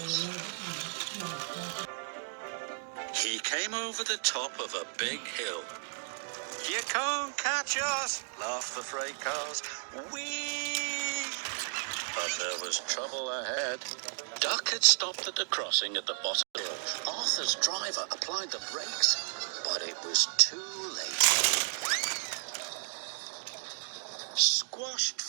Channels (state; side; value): silent; left; digital silence